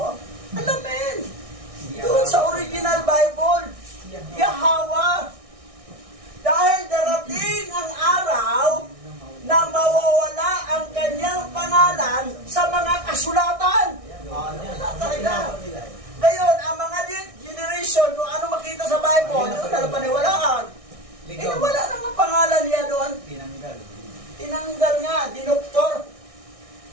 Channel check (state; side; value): late; left; 1.6 ms